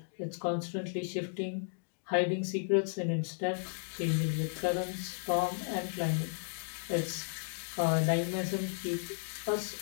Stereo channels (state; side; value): silent; right; digital silence